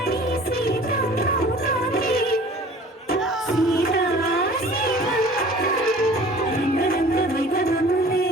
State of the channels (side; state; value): both; normal; correlation 0.47